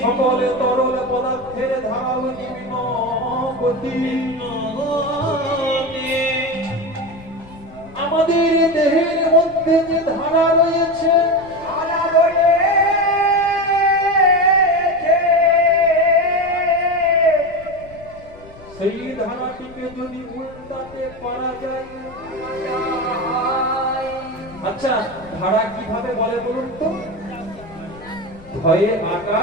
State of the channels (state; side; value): noise; left; rumble, 20 dB below the sound